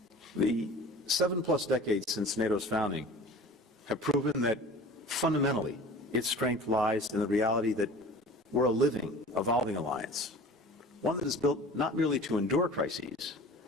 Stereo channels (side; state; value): both; normal; correlation 0.41